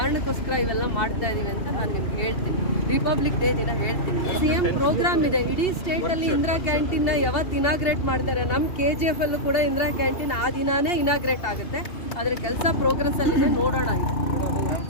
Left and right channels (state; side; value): late; right; 2.7 ms